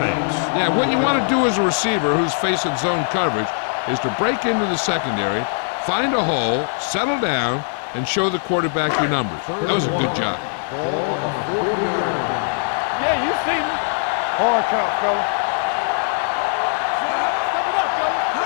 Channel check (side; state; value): right; silent; 59 dB below the other